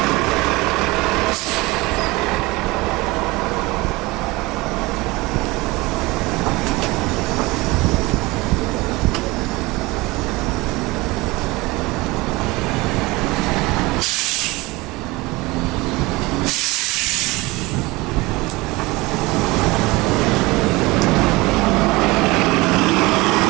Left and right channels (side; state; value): left; quieter; 22.3 dB